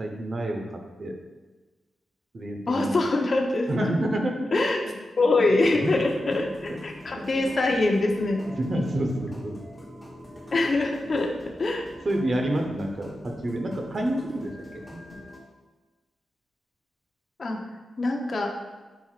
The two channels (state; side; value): normal; both; correlation 0.90